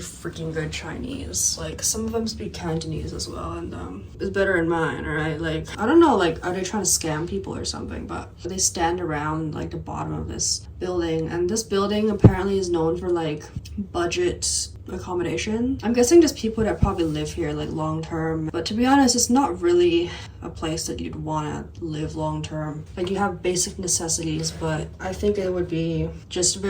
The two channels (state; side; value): identical; both; correlation 1.00